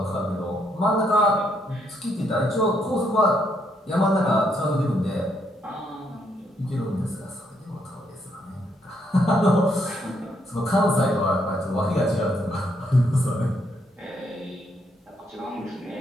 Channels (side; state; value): both; normal; correlation 0.74